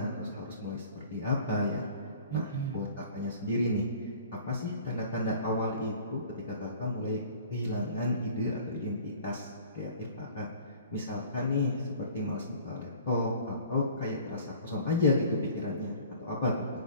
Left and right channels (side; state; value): both; inverted; correlation -0.48